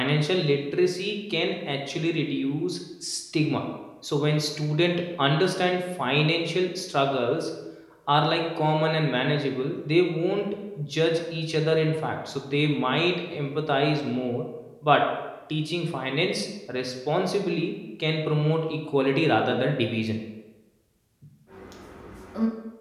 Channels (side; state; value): both; identical; correlation 1.00